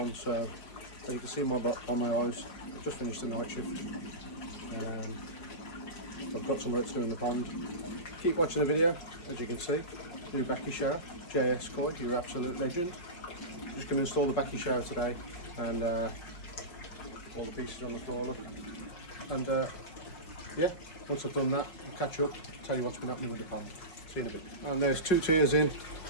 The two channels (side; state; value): right; late; 5.5 ms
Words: so as you can see on my eyes, I've just finished the night shift. I've got some work to do in the pond. Keep watching the video. As you can see, new Bakki shower, JS Koi, your absolute legend. I'm just going to install the Bakki shower today, and all the pieces on the floor, look. And yeah, once I've done that, I'll catch up, tell you what's been happening with the pond. See you in a bit. And there's 2 tiers in.